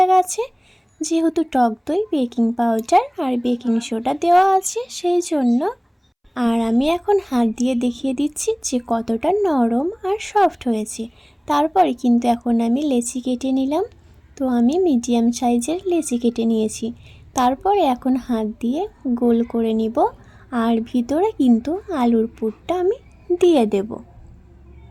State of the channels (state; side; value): identical; both; correlation 1.00